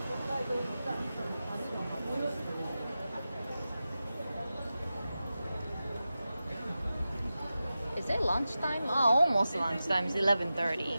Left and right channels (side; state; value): both; inverted; correlation -0.93